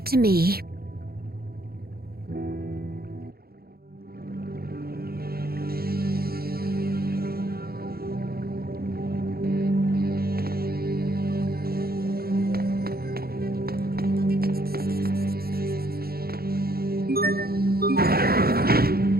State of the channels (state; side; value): late; left; 0.44 ms